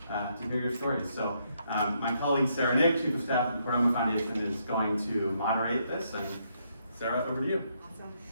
to hear your stories. So my colleague Sara Nick, Chief of Staff at the Chordoma Foundation, is going to moderate this, and Sara, over to you. Awesome.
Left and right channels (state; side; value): inverted; both; correlation -0.75